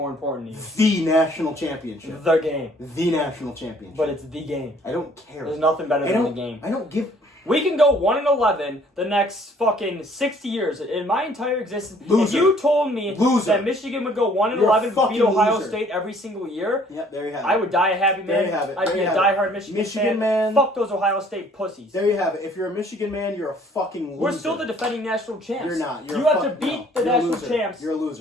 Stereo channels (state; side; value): normal; both; correlation 0.58